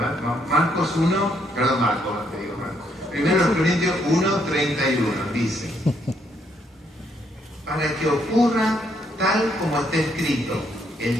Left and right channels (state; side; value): normal; both; correlation 0.72